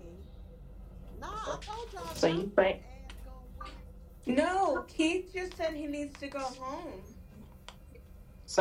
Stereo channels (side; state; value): both; identical; correlation 1.00